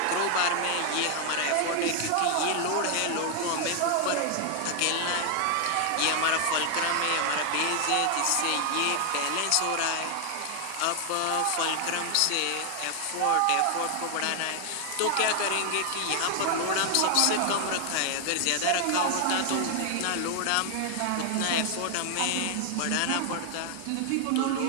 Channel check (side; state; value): both; different; correlation 0.00